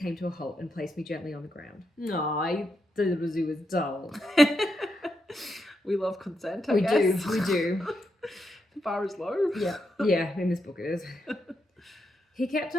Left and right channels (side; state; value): both; normal; correlation 0.83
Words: to a halt and placed me gently on the ground. No, I thought it was dull. We love consent, I guess. We do. The bar is low. Yeah, in this book it is. He kept